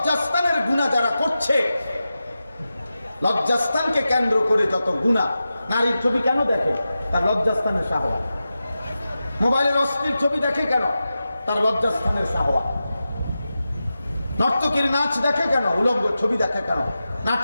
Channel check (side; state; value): both; inverted; correlation -0.92